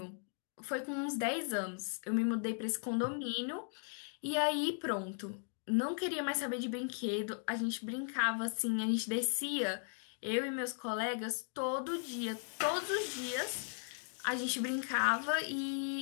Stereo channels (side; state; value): right; silent; 53 dB below the other